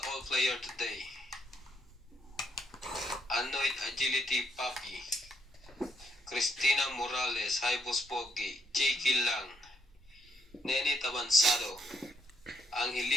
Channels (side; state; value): both; normal; correlation 0.73